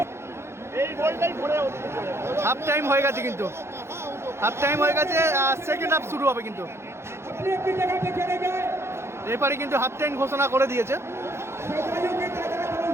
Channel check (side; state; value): left; late; 0.13 ms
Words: হাফ টাইম হয়ে গেছে কিন্তু, সেকেন্ড হাফ শুরু হবে কিন্তু, রেফারি কিন্তু হাফ টাইম ঘোষণা করে দিয়েছে।